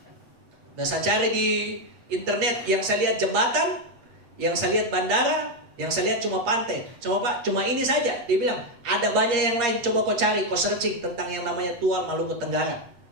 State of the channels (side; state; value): left; late; 8.5 ms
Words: Nah, saya cari di internet, yang saya lihat jembatan, yang saya lihat bandara, yang saya lihat cuma pantai. Cuma Pak, cuma ini saja. Dia bilang, ada banyak yang lain, coba kau cari, kau searching tentang yang namanya tual Maluku Tenggara.